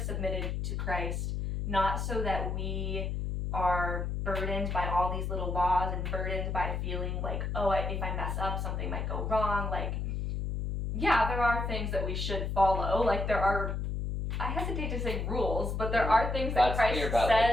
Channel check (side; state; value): left; noise; hum, 2 dB below the sound